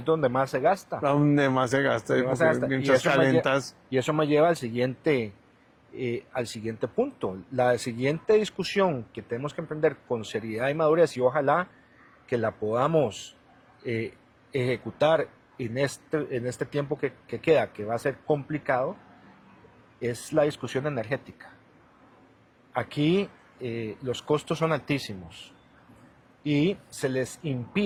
donde más se gasta. Donde más se gasta, mientras calentas. Y eso me lleva al siguiente punto. La siguiente discusión que tenemos que emprender con seriedad y madurez, y ojalá que la podamos ejecutar en este tiempo que queda, que va a ser complicado, es la discusión energética. Aquí los costos son altísimos y se les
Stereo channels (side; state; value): both; identical; correlation 1.00